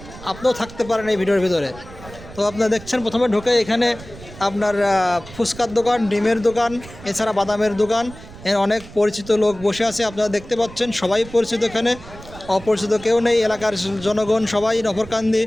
আপনিও থাকতে পারেন এই ভিডিওর ভিতরে। তো আপনারা দেখছেন প্রথমে ঢুকে এখানে আপনার ফুচকার দোকান, ডিমের দোকান, এছাড়া বাদামের দোকান, অনেক পরিচিত লোক বসে আছে আপনারা দেখতে পাচ্ছেন। সবাই পরিচিত, এখানে অপরিচিত কেউ নেই। এলাকার জনগণ সবাই নফরকান্দি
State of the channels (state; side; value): noise; right; rumble, 17 dB below the sound